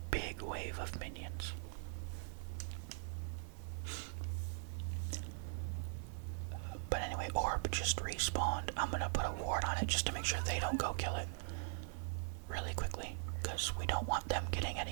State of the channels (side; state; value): left; silent; 50 dB below the other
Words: big wave of minions. But anyway, Orb just respawned. I'm gonna put a ward on it just to make sure they don't go kill it. because we don't want them getting